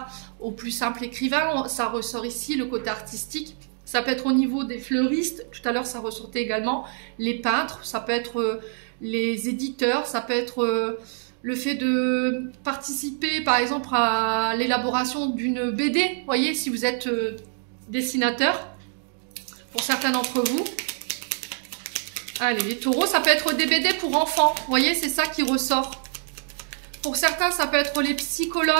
au plus simple écrivain. Ça ressort ici, le côté artistique. Ça peut être au niveau des fleuristes. Tout à l'heure, ça ressortait également les peintres. Ça peut être les éditeurs. Ça peut être le fait de participer, par exemple, à l'élaboration d'une BD. Vous voyez, si vous êtes dessinateur, pour certains d'entre vous. Allez, les taureaux, ça peut être des BD pour enfants. Vous voyez, c'est ça qui ressort. Pour certains, ça peut être les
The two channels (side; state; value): left; silent; 61 dB below the other